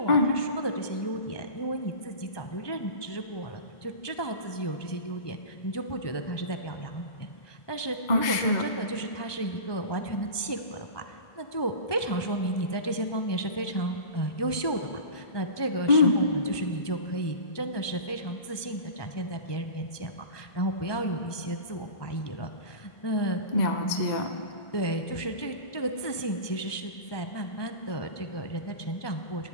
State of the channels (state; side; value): late; right; 1.2 ms